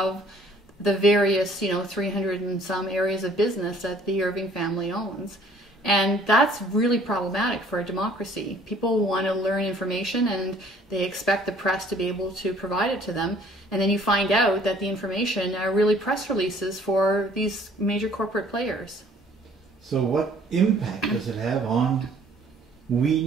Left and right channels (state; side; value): normal; both; correlation 0.57